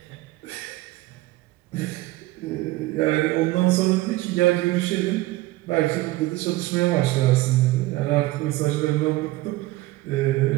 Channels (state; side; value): quieter; left; 18.4 dB